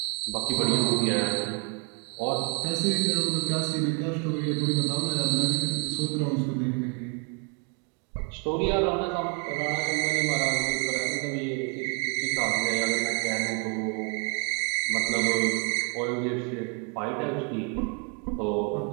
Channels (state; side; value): quieter; left; 36.5 dB